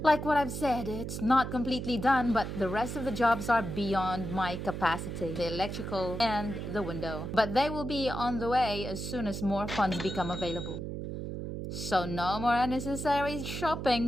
Like what I've said, it's not completely done, but the rest of the jobs are beyond my capacity. The electrical and the window. But they will be on the way as soon as more funds become available. So no more unnecessary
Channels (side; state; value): right; noise; hum, 6 dB below the sound